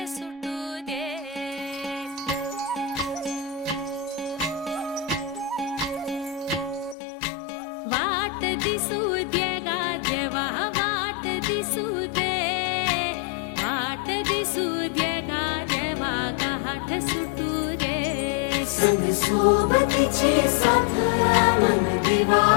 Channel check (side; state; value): right; drops out; at 7.0 s